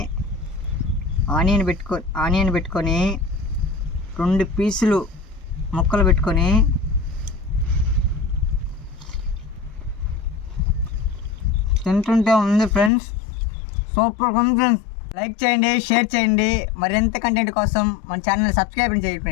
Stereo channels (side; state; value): right; drops out; at 12.9 s